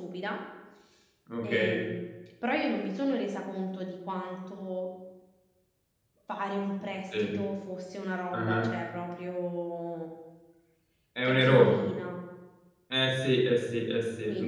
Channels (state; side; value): identical; both; correlation 1.00